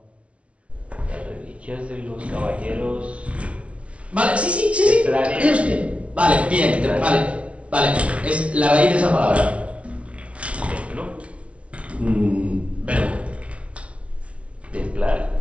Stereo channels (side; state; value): left; late; 0.062 ms